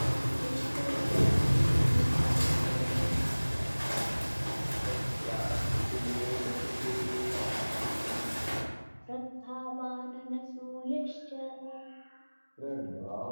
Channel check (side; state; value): both; inverted; correlation -1.00